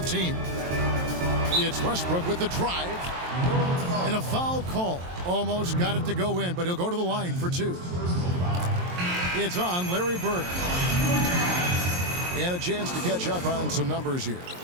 It's Westbrook with the drive. And a foul call. Almost got it to go in, but he'll go to the line for 2. It's on Larry Bird. And a chance to catch up on some numbers here.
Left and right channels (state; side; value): late; left; 23 ms